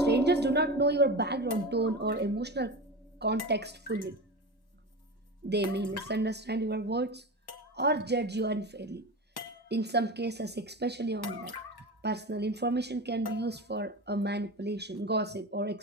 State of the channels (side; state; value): both; normal; correlation 0.26